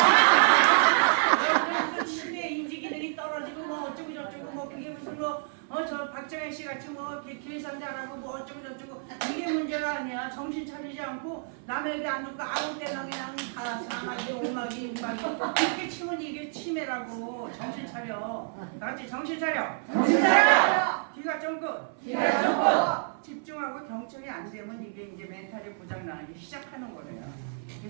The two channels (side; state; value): left; silent; 59 dB below the other